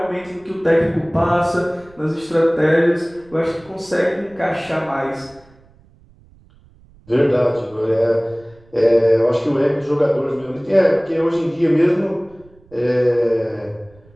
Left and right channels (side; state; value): right; noise; rumble, 28 dB below the sound